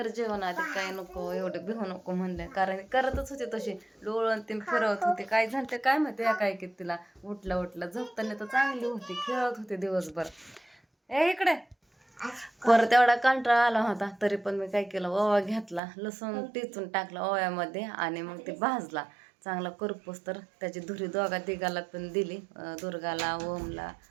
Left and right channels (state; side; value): drops out; left; at 15.8 s